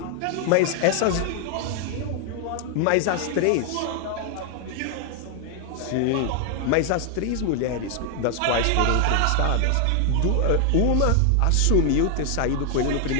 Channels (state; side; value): different; both; correlation 0.00